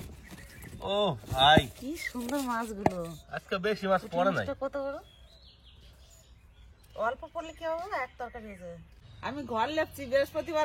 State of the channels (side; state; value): both; identical; correlation 1.00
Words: ও ভাই, কি সুন্দর মাছগুলো। আজকে বেশি মাছ পড়ে নাই। মাছটা কত বড়? অল্প পড়লে কি হবে, এক তরকারি হয়ে যাবে। আমি ঘর লেপছি বৃহস্পতিবার